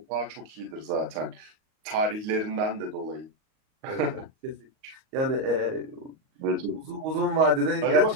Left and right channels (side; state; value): left; late; 38 ms